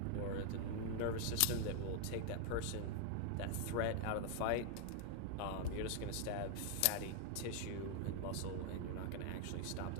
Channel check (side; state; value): both; different; correlation 0.00